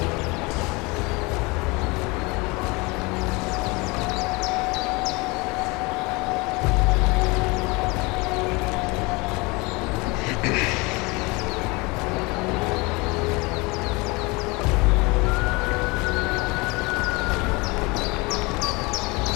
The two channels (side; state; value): right; quieter; 25.8 dB